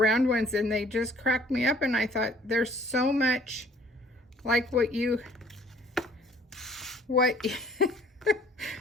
ones and they just cracked me up, and I thought there's so much like what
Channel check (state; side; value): normal; both; correlation 0.56